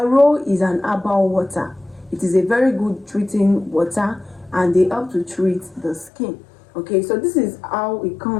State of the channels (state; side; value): drops out; right; at 6.1 s